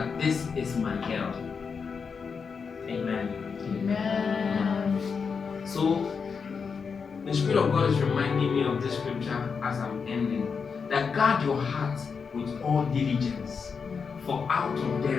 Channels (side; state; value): right; quieter; 5.7 dB